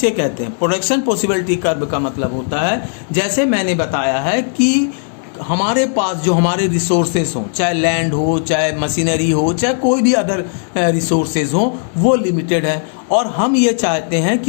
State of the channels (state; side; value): silent; right; digital silence